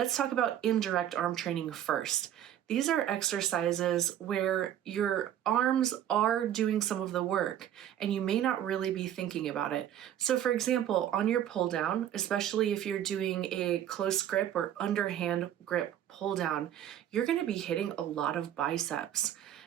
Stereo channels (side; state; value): left; quieter; 10.9 dB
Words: talk about indirect arm training first. These are exercises where your arms are doing some of the work and you may not really be thinking about it. So for example, on your pull down, especially if you're doing a close grip or underhand grip pull down, you're going to be hitting a lot of biceps.